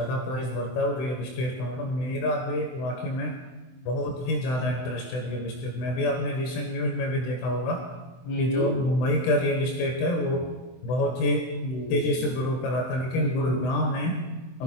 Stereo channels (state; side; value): late; right; 24 ms